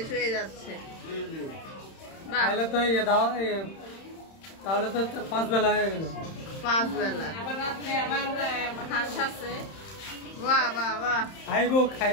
হয়ে যাচ্ছে। তাহলে তো তাহলে তো 5 বেলা হয়ে গেল। 5 বেলা। আবার রাত্রে আবার হাঁস আছে। বাহ বাহ বাহ।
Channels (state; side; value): late; right; 31 ms